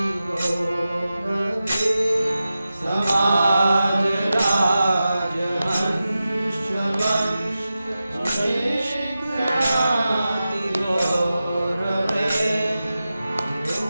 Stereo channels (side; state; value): both; inverted; correlation -0.93